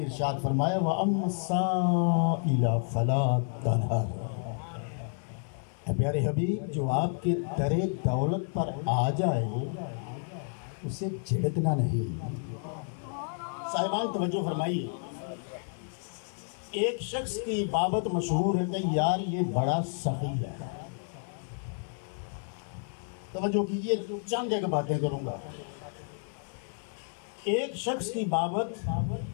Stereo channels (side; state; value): right; silent; 57 dB below the other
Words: ارشاد فرمایا وَأَمَّا السَّائِلَ فَلَا تَنْهَرْ۔ پیارے حبیب، جو آپ کے در دولت پر آ جائے اسے جھڑکنا نہیں۔ صاحبان توجہ فرمائیے، ایک شخص کی بابت مشہور ہے کہ یار یہ بڑا سخی ہے۔ توجہ کیجئے، چند ایک باتیں کروں گا۔ ایک شخص کی بابت